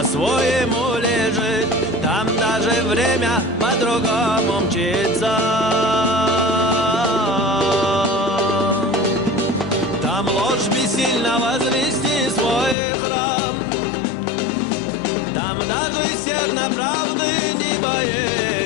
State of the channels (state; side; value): drops out; right; at 12.8 s